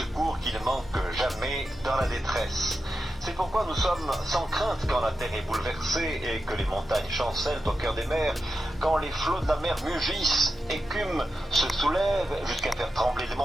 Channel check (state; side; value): normal; both; correlation 0.89